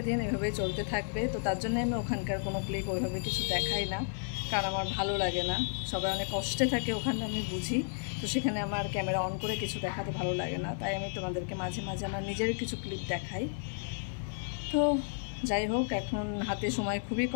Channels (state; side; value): silent; right; 56 dB below the other